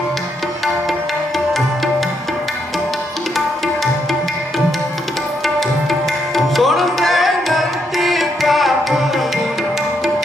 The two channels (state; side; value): normal; both; correlation 0.77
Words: सुन बेनती प्रभु